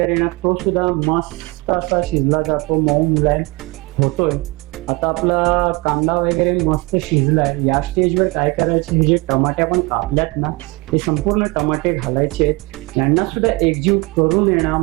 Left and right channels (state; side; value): quieter; left; 25.2 dB